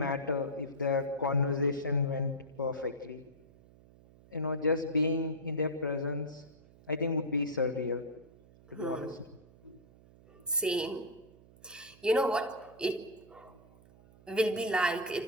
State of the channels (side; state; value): right; noise; hum, 24 dB below the sound